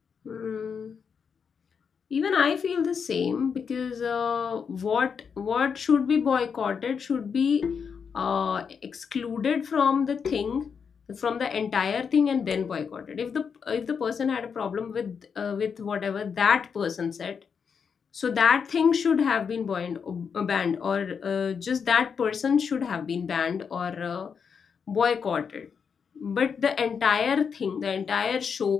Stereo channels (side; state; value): right; quieter; 6.4 dB